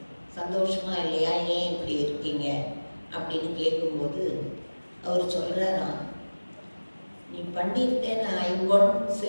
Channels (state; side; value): inverted; both; correlation -1.00